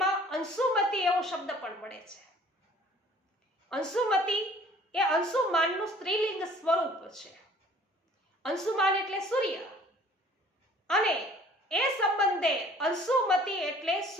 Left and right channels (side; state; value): both; normal; correlation 0.53